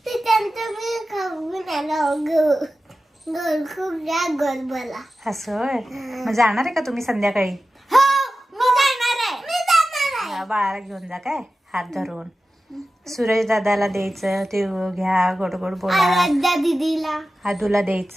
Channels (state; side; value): normal; both; correlation 0.94